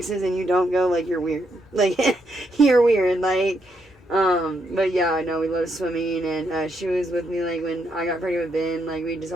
and you don't go, you're weird. You're weird. But yeah, I know we love swimming, and she was with me, when I got pregnant with Ben. We just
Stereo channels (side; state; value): both; normal; correlation 0.78